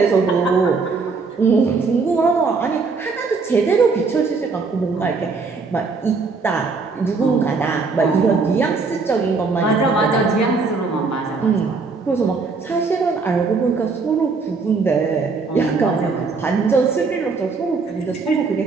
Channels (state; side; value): quieter; left; 4.4 dB